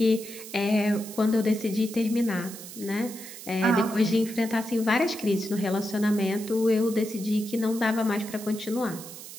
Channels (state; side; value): noise; right; hiss, 13 dB below the sound